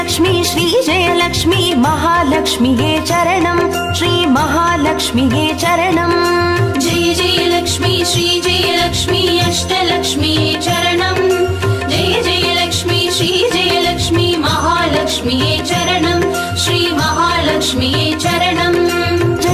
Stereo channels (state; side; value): identical; both; correlation 1.00